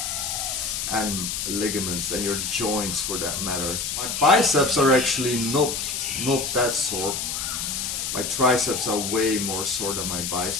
and ligaments and your joints for that matter. My biceps are actually not that sore. My triceps are way more sore than my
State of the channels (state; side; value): noise; left; hiss, 2 dB below the sound